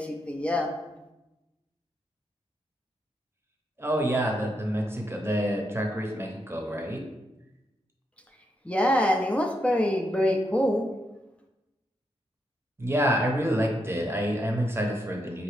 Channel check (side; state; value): both; normal; correlation 0.81